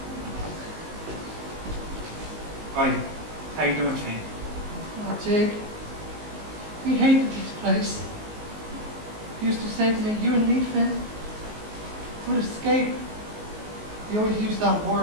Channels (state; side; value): late; left; 19 ms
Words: Hi. How you doing, Finn? Oh, Jake. We hated this place. He used to say to me, you and me, Finn, would escape. He always used that